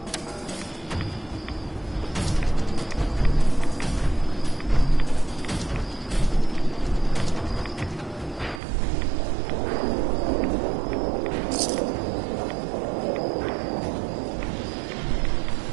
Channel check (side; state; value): left; drops out; at 8.6 s